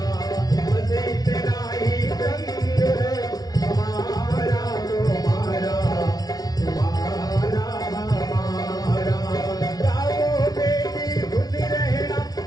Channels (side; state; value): right; late; 0.19 ms